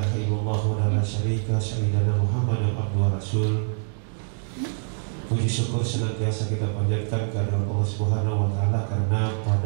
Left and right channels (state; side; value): silent; left; digital silence